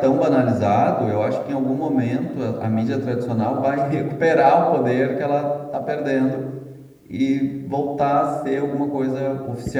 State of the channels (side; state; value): both; identical; correlation 1.00